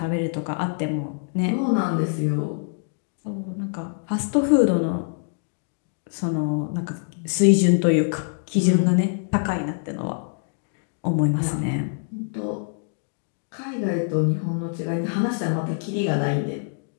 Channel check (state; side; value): silent; right; digital silence